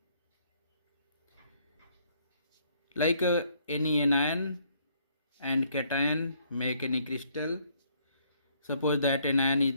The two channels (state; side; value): inverted; both; correlation -0.67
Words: like any anion and cation make any crystal. Suppose that anion is